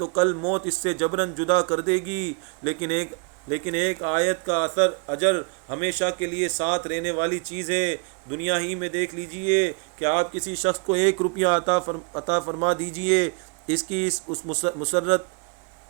کل موت اس سے جبراً جدا کر دے گی، لیکن ایک آیت کا اجر ہمیشہ کے لیے ساتھ رہنے والی چیز ہے۔ دنیا ہی میں دیکھ لیجئے کہ آپ کسی شخص کو 1 روپیہ عطا فرما دیجئے، اس کی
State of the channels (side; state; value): left; quieter; 35.6 dB